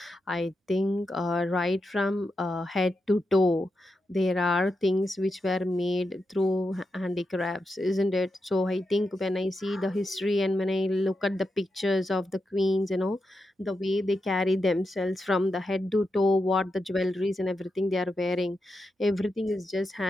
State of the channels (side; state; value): both; normal; correlation 0.87